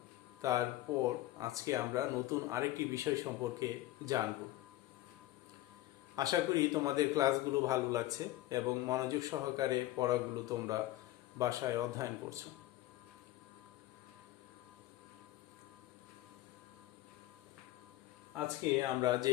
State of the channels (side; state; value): right; quieter; 15.8 dB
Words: তারপর আজকে আমরা নতুন আরেকটি বিষয় সম্পর্কে জানব। আশা করি তোমাদের ক্লাসগুলো ভালো লাগছে এবং মনোযোগ সহকারে পড়াগুলো তোমরা বাসায় অধ্যয়ন করছো। আজকে আমরা যে